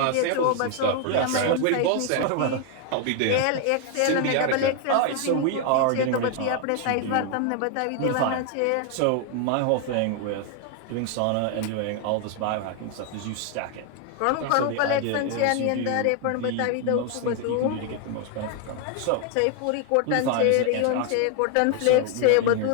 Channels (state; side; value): different; both; correlation 0.00